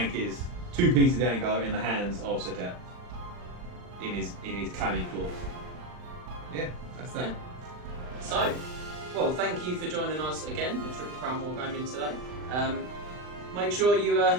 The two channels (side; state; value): left; late; 39 ms